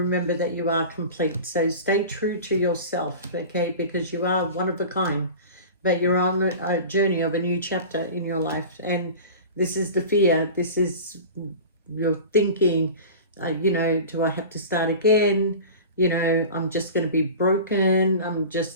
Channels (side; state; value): both; inverted; correlation -0.35